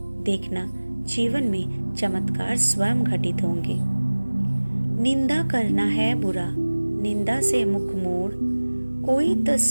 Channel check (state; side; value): inverted; both; correlation -1.00